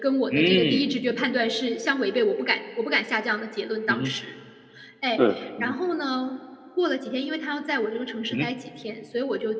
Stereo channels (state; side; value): identical; both; correlation 1.00